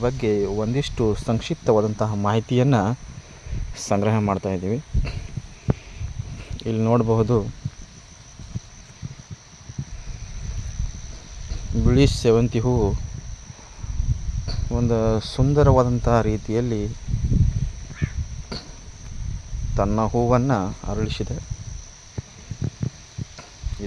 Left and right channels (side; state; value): both; identical; correlation 1.00